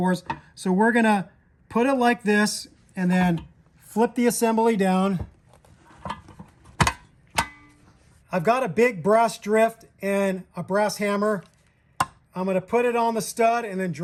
So we're gonna put it like this and then flip the assembly down. I've got a big brass drift and a brass hammer. I'm gonna put it on the stud and then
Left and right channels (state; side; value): identical; both; correlation 1.00